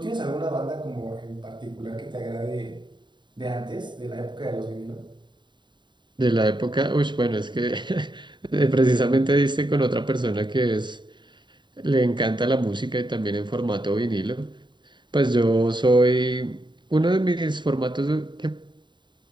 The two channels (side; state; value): left; late; 0.22 ms